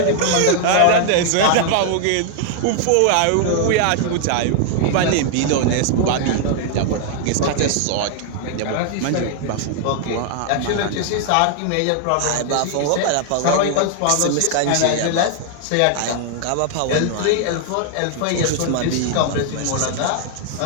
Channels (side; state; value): both; different; correlation 0.00